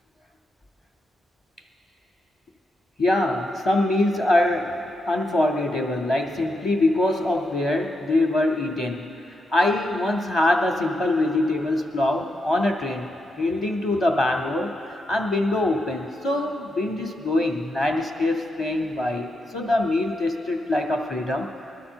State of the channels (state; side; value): normal; both; correlation 0.84